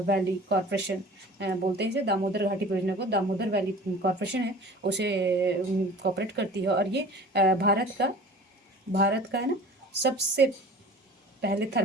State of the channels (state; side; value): normal; both; correlation 0.42